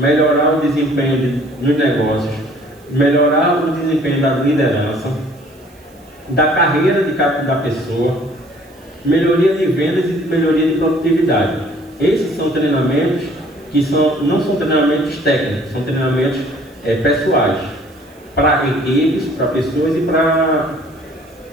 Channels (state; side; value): noise; right; hiss, 30 dB below the sound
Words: o desempenho nos negócios, melhorar o desempenho da liderança, da carreira da pessoa, melhoria de vendas e melhoria de produtividade. Esses são treinamentos que não são treinamentos técnicos, são treinamentos pessoais, para equipes, para pessoas e para